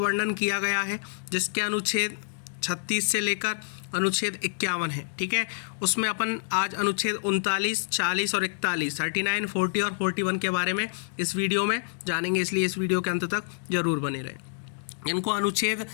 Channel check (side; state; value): right; silent; digital silence